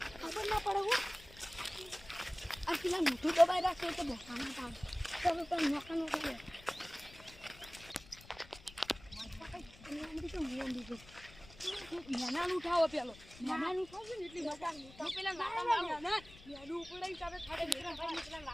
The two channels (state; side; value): noise; left; rumble, 20 dB below the sound